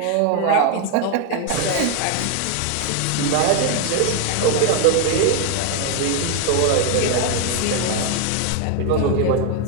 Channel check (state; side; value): different; both; correlation 0.01